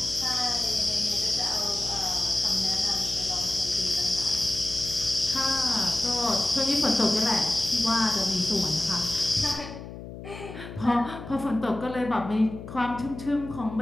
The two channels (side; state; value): left; noise; hum, 12 dB below the sound